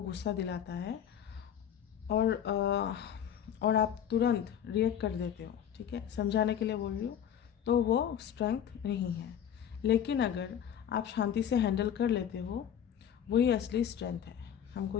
गुस्सा दिलाता है और आप तुरंत रिएक्ट कर देते हो, ठीक है, समझाने के लिए बोल रही हूँ, तो वो स्ट्रेंथ नहीं है। लेकिन अगर आप शांति से हैंडल कर लेते हो, वही असली स्ट्रेंथ है, हमको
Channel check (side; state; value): right; quieter; 9.3 dB